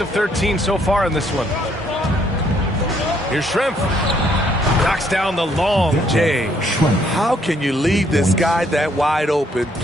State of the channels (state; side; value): normal; both; correlation 0.68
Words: of 13 so far in this one. Here's Shrimp. Knocks down the long J. How can you leave this guy that wide open?